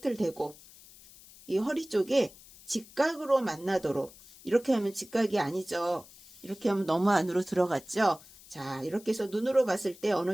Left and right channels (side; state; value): left; noise; hiss, 22 dB below the sound